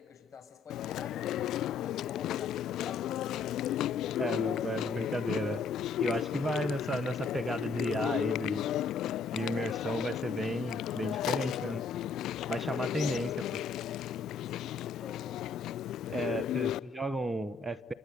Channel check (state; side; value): quieter; right; 4.5 dB